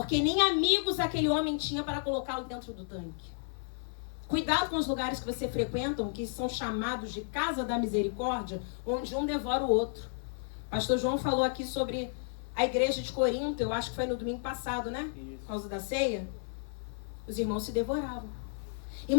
nem amigos aquele homem tinha para colocá-lo dentro do tanque. Cuidado com os lugares que você frequenta, que são chamados de casa da misericórdia, onde um devora o outro. Pastor João falou aqui sobre a igreja de Corinto, eu acho que foi no domingo passado, né? Por causa da ceia. Os irmãos se devoravam.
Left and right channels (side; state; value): right; silent; digital silence